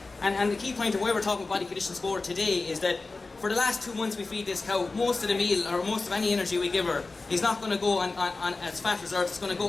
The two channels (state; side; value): quieter; right; 3.6 dB